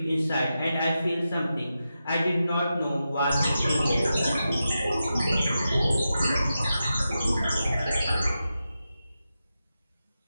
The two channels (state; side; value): inverted; both; correlation -0.90